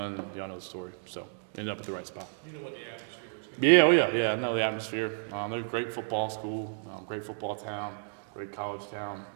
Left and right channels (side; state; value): left; silent; digital silence